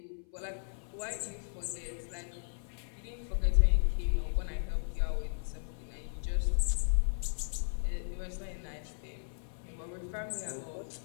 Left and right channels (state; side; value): silent; right; 54 dB below the other